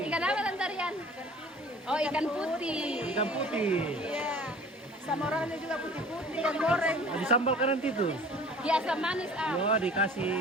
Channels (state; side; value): normal; both; correlation 0.46